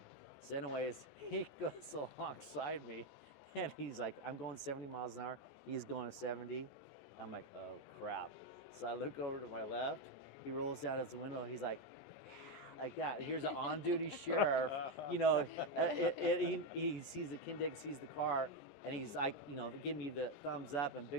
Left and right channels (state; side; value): late; right; 14 ms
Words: so anyways, he goes alongside me, and he's like, I'm going 70 miles an hour. He's going 70. I'm like, oh crap. So I look over to my left. He rolls down his window. He's like that. Here's an on-duty sheriff. He sees the Kindig, sees the car, and he's like, give me the thumbs up and big